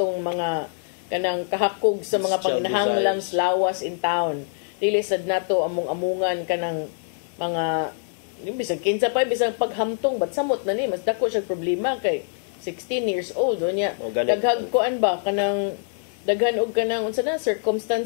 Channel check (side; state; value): right; silent; 61 dB below the other